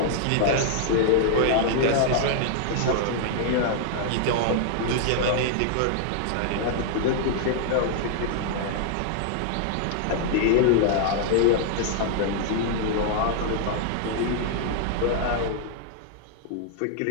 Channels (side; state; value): both; different; correlation 0.00